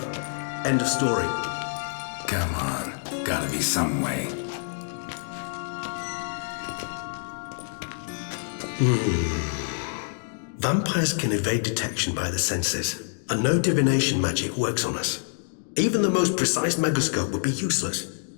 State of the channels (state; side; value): silent; right; digital silence